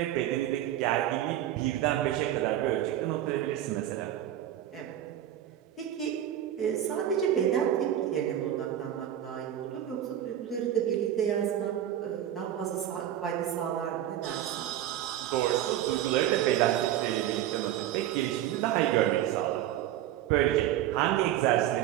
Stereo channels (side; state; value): left; quieter; 11.8 dB